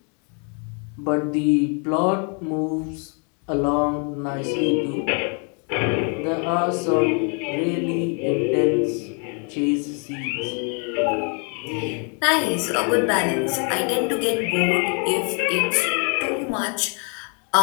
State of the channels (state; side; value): quieter; right; 37.9 dB